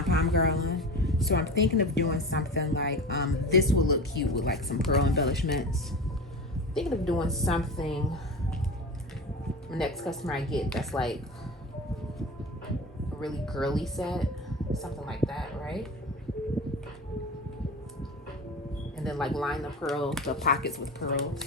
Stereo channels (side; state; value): both; normal; correlation 0.31